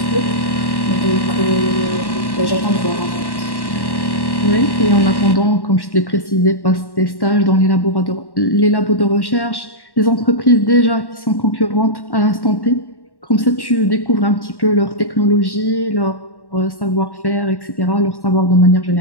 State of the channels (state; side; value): late; right; 1.1 ms